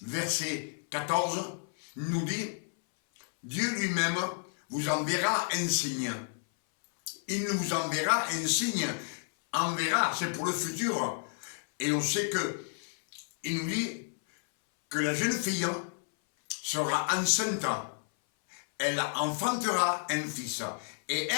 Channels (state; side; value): silent; right; 57 dB below the other